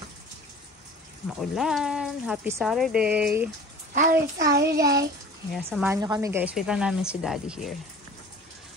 Maulan. Happy Saturday. Happy Saturday. Yeah, samahan nyo kami guys. Wait lang namin si Daddy here.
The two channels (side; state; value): both; normal; correlation 0.42